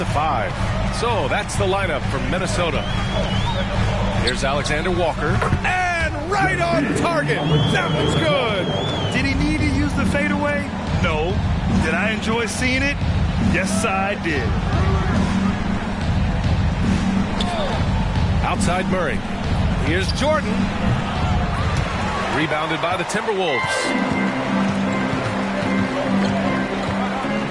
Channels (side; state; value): both; identical; correlation 1.00